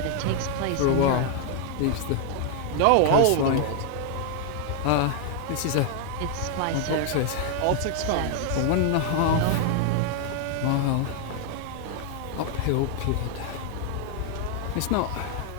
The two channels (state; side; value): different; both; correlation 0.00